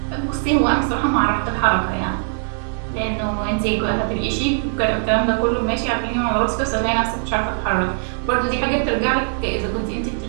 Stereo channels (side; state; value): left; silent; 65 dB below the other